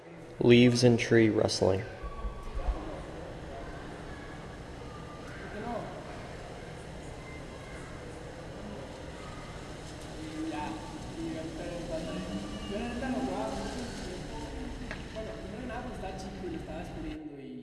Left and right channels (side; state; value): both; identical; correlation 1.00